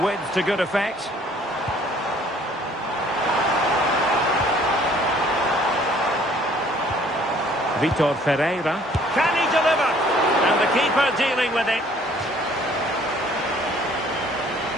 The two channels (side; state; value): both; normal; correlation 0.58